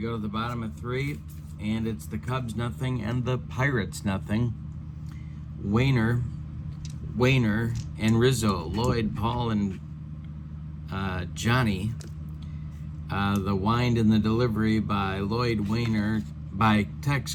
to the bottom of three, and it's the Cubs nothing and the Pirates nothing. Wainer, and Rizzo, Lloyd, Paul, and Johnny. The wind and the delivery by by Tex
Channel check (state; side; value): identical; both; correlation 1.00